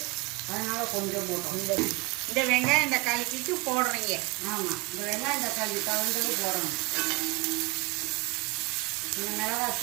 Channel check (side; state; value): left; quieter; 26.8 dB